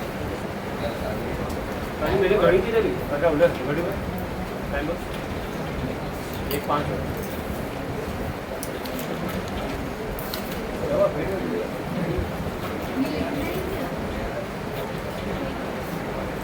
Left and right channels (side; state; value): both; identical; correlation 1.00